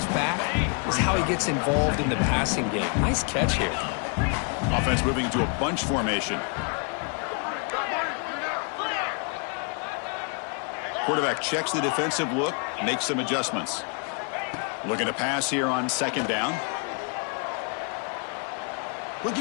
back is how he gets involved in the passing game. Nice catch here. Offense moving into a bunch formation. Quarterback checks the defensive look, makes some adjustments. Looking to pass here on 2nd down.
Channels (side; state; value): right; quieter; 37.9 dB